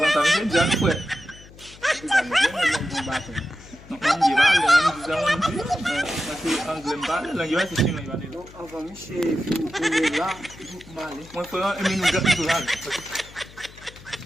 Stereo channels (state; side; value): noise; left; hum, 21 dB below the sound